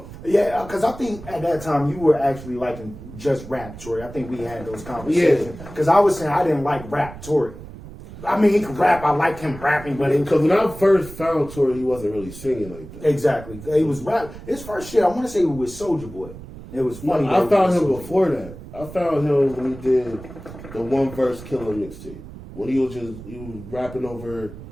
Yeah, because I think at that time you were actually liking just rap, Tory. I think we had those conversations. Because I was saying I didn't like rap, Tory. I mean, he could rap. I liked him rapping, but it Because when I first found Tory, he wasn't really singing like that. exactly. He was rap. His first shit, I want to say, was Soulja Boy. It was funny. I that found he him was Soulja before that. I found him when he did the One Verse Killer mixtape. When he was rapping over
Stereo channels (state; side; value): noise; right; rumble, 15 dB below the sound